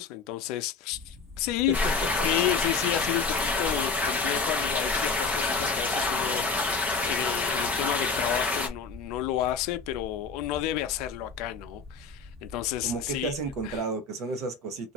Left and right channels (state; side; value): quieter; right; 4.7 dB